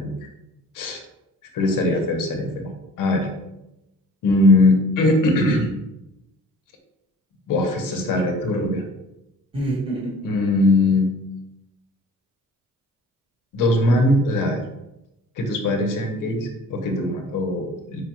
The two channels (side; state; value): both; normal; correlation 0.48